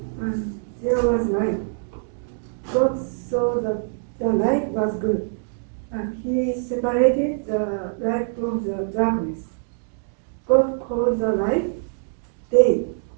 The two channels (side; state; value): left; silent; digital silence